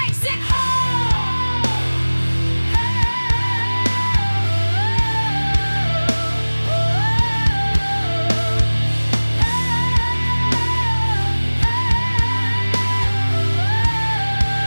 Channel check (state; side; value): inverted; both; correlation -1.00